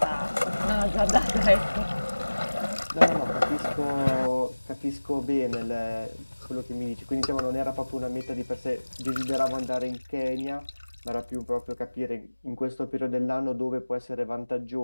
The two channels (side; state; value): both; inverted; correlation -1.00